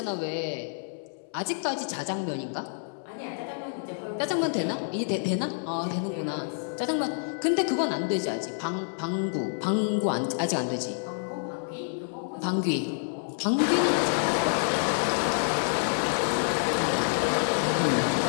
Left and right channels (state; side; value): silent; right; 59 dB below the other